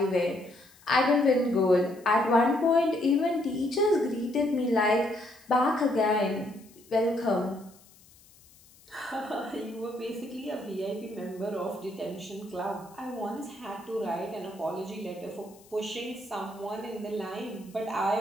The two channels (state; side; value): noise; left; hiss, 26 dB below the sound